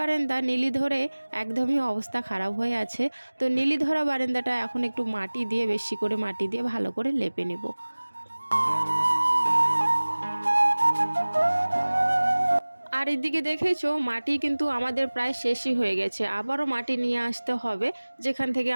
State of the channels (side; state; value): both; inverted; correlation -1.00